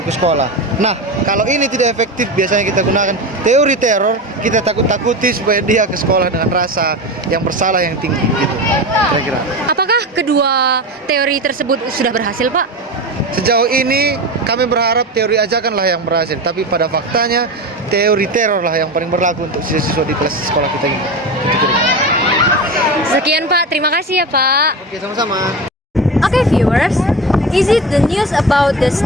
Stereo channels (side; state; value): both; normal; correlation 0.24